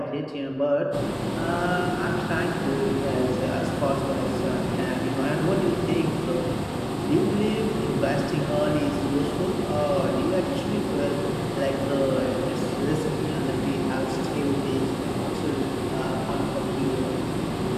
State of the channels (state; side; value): identical; both; correlation 1.00